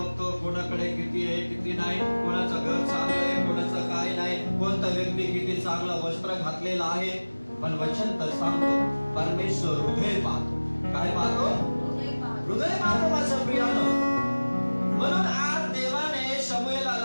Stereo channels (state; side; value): inverted; both; correlation -1.00